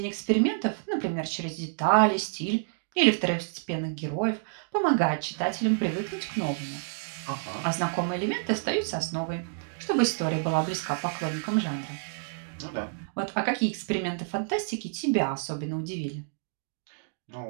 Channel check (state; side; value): silent; left; digital silence